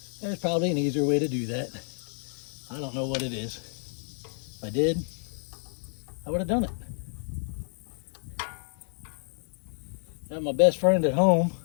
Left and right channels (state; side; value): silent; right; 57 dB below the other